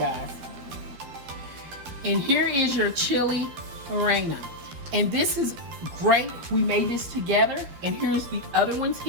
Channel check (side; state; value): left; late; 12 ms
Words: And here is your chili Relleno. And this is great. We made this together, and here's the other ones